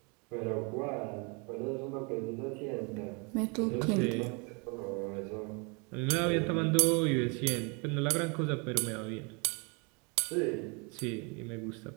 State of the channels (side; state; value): left; quieter; 32.8 dB